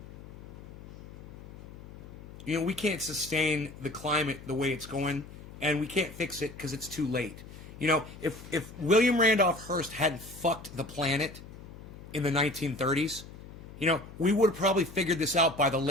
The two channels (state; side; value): noise; left; hum, 15 dB below the sound